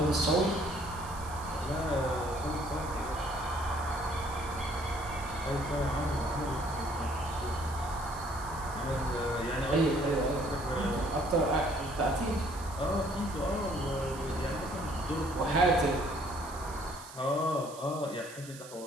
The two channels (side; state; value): right; noise; hiss, 16 dB below the sound